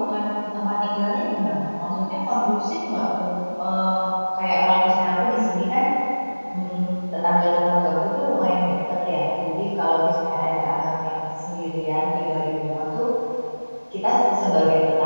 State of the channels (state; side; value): inverted; both; correlation -1.00